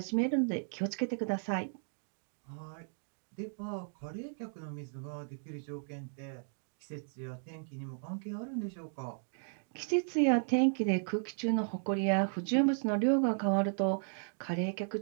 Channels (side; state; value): left; silent; digital silence